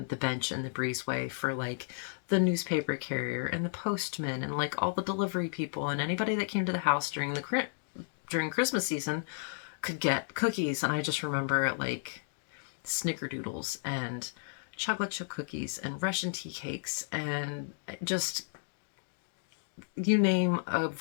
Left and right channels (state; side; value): silent; right; digital silence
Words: the bench in the breezeway for like the newspaper carrier and the postman and like all the delivery people and anybody that came to the house during Christmas season could get cookies. And I just remember like snickerdoodles and chocolate chip cookies and Russian tea cakes and just you name a